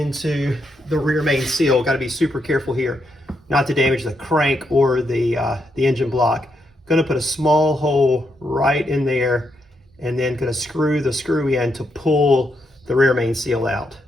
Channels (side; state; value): both; normal; correlation 0.80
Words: the rear main seal. Got to be super careful here not to damage the crank or the engine block. Going to put a small hole right in there and then going to screw the screw in to pull the rear main seal out.